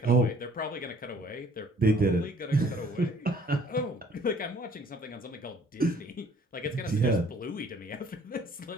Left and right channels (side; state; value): both; normal; correlation 0.57